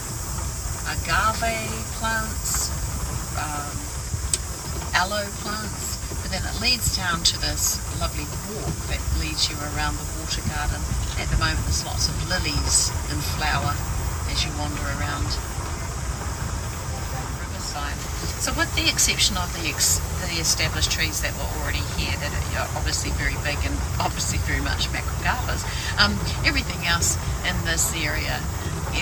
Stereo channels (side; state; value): both; identical; correlation 1.00